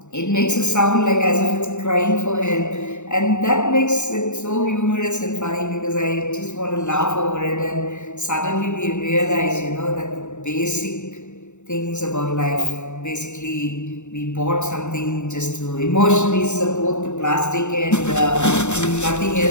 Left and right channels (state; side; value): late; right; 0.84 ms